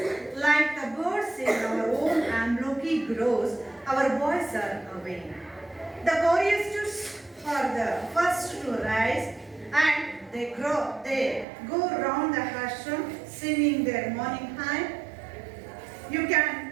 like the birds in our own Amloki groves, our boys are awake. The choristers are the first to rise and they go round the ashram singing their morning hymn. You can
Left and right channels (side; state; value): left; drops out; at 11.5 s